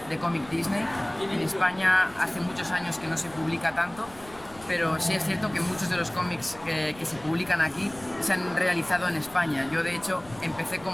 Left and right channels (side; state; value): left; noise; rumble, 21 dB below the sound